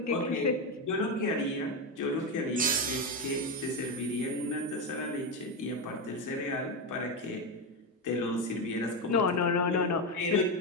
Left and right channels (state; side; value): normal; both; correlation 0.11